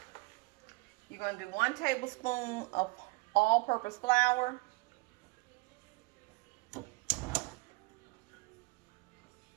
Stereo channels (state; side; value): quieter; left; 24.9 dB